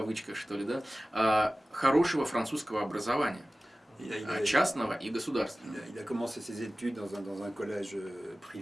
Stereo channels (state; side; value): normal; both; correlation 0.97